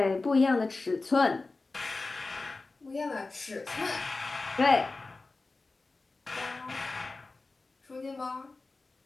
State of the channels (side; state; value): right; quieter; 3.5 dB